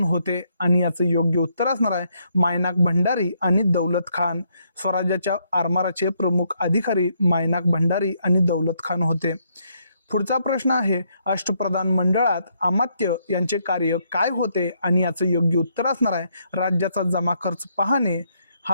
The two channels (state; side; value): inverted; both; correlation -0.74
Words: होते आणि याचं योग्य उत्तर असणार आहे मायनाक भंडारी आणि दौलत खान. स्वराज्याच्या आरमाराचे प्रमुख अधिकारी मायनाक भंडारी आणि दौलत खान होते. पुढचा प्रश्न आहे, अष्टप्रधान मंडळात अमात्य यांचे कार्य काय होते आणि याचं योग्य उत्तर असणार आहे राज्याचा जमा खर्च पाहणे.